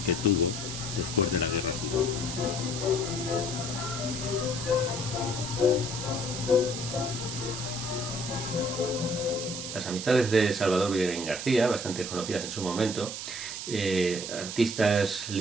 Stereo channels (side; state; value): right; noise; hiss, 6 dB below the sound